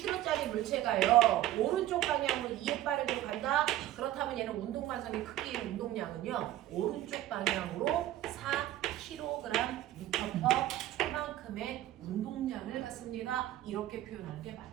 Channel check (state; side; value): quieter; left; 14.1 dB